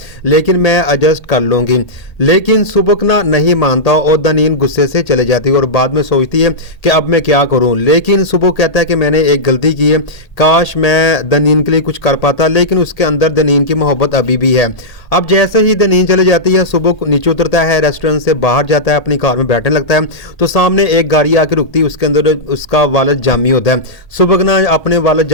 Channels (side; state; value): right; late; 1.8 ms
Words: लेकिन मैं एडजस्ट कर लूँगी। लेकिन सुबुक ना नहीं मानता और दनीन गुस्से से चले जाती है और बाद में सोचती है कि अब मैं क्या करूं। लेकिन सुबुक कहता है कि मैंने एक गलती की है, काश मैं दनीन के लिए कुछ कर पाता, लेकिन उसके अंदर दनीन की मोहब्बत अभी भी है। अब जैसे ही दनीन चले जाती है, सुबुक नीचे उतरता है, रेस्टोरेंट से बाहर जाता है, अपनी कार में बैठने लगता है तो सामने एक गाड़ी आके रुकती है, उसके अंदर उसका वालिद जामी होता है। सुबुक ना अपने वालिद